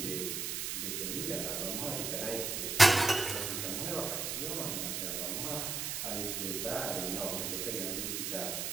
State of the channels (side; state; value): right; noise; hiss, 2 dB below the sound